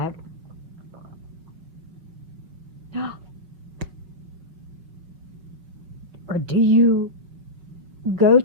or do you go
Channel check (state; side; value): late; left; 5.7 ms